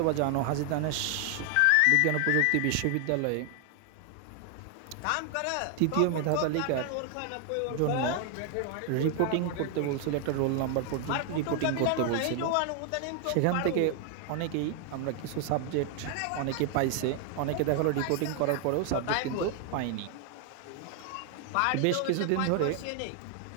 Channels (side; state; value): both; different; correlation 0.00